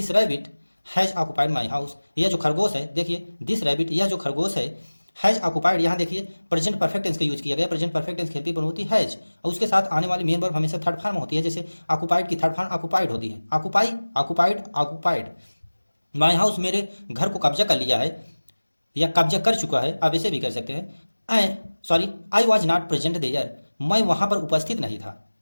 rabbit has occupied my house, यह जो खरगोश है, देखिए दिस रैबिट यह जो खरगोश है, हैज ऑक्युपाइड, यहाँ देखिए प्रेजेंट परफेक्ट टेंस का यूज किया गया, present perfect tense helping verb होती है हैज, और उसके साथ आने वाली मेन वर्ब हमेशा थर्ड फॉर्म होती है, जैसे ऑक्युपाइड की थर्ड फॉर्म ऑक्युपाइड होती है, ऑक्युपाइड। माई हाउस मेरे घर को कब्जा कर लिया है या कब्जा कर चुका है, आप ऐसे भी कर सकते हैं। I was not present there, मैं वहाँ पर उपस्थित नहीं था,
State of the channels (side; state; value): both; inverted; correlation -1.00